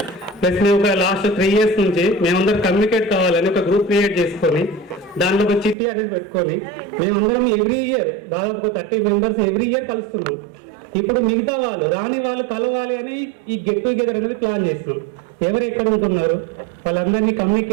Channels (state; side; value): drops out; left; at 5.8 s